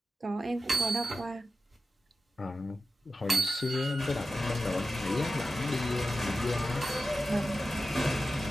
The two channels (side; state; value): both; normal; correlation 0.92